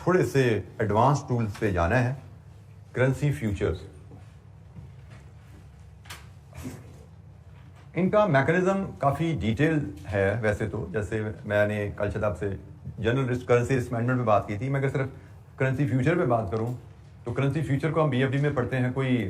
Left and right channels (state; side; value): identical; both; correlation 1.00